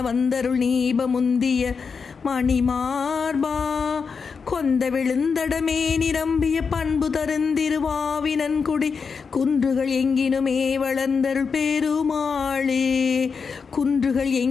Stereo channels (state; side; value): quieter; right; 5.5 dB